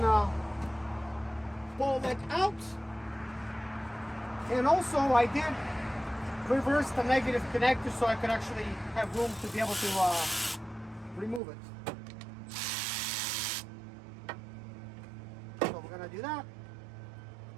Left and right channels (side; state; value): left; drops out; at 11.4 s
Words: pull that out. And also I did reverse the negative connector so I could actually have room to be able to remove it. So we're gonna do that.